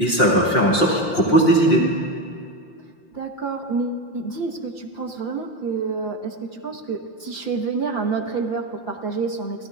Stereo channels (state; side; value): late; right; 5.7 ms